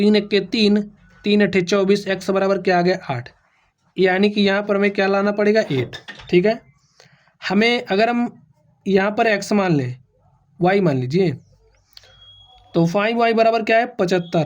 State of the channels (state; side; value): identical; both; correlation 1.00